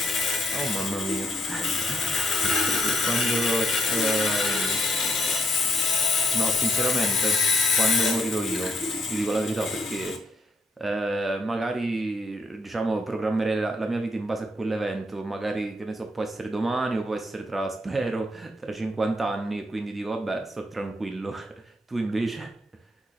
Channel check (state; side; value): normal; both; correlation 0.73